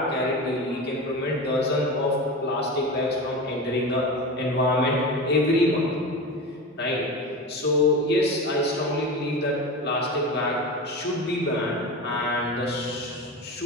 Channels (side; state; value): both; normal; correlation 0.26